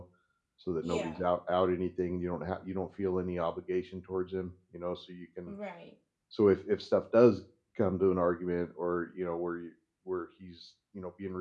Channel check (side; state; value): both; identical; correlation 1.00